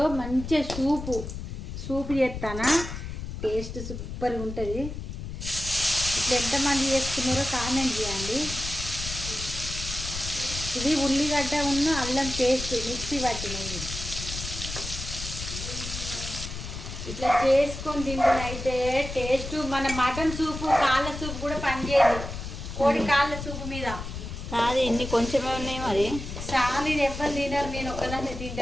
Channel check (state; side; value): noise; left; rumble, 8 dB below the sound